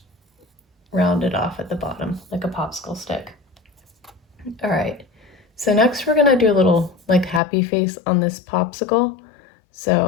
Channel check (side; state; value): right; drops out; at 7.4 s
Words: round it off at the bottom like a popsicle stick. All right, so next we're gonna do a little like happy face on this popsicle.